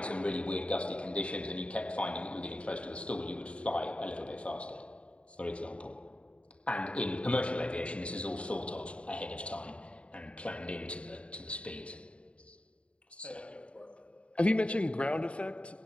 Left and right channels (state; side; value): late; right; 0.061 ms